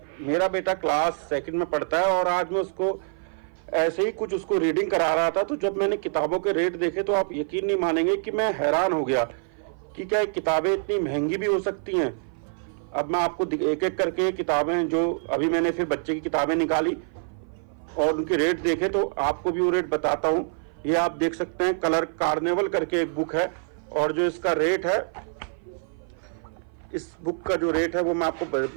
मेरा बेटा क्लास सेकंड में पढ़ता है और आज मैं उसको ऐसे ही कुछ उसको रीडिंग करा रहा था, तो जब मैंने किताबों के रेट देखे तो आप यकीन नहीं मानेंगे कि मैं हैरान हो गया कि क्या किताबें इतनी महंगी भी हो सकती हैं। अब मैं आपको एक एक करके किताबें, जो अभी मैंने फिर बच्चे की किताबें निकाली और उनके रेट देखे, तो आपको भी वो रेट बताता हूँ। ये आप देख सकते हैं, कलर कार्निवल करके एक बुक है, और जो इसका रेट है, इस बुक का जो रेट है वो मैं आपको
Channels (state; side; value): silent; left; 56 dB below the other